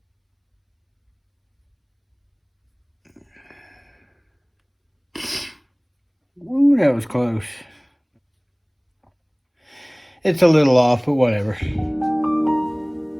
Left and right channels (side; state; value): both; identical; correlation 1.00